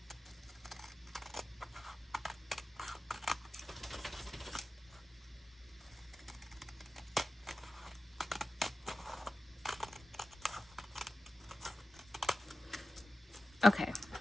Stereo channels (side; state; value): both; normal; correlation 0.94